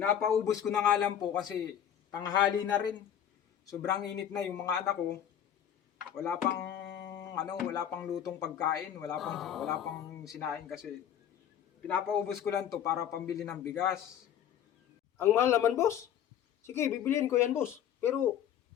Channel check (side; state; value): right; quieter; 9.7 dB